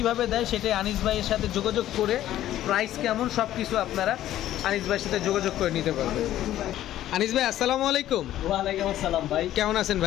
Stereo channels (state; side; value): quieter; right; 13.0 dB